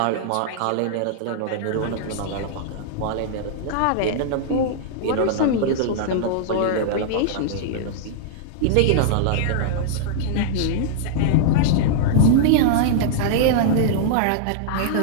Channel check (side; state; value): both; different; correlation -0.01